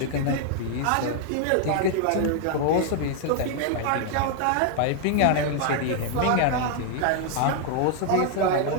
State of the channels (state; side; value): different; both; correlation 0.00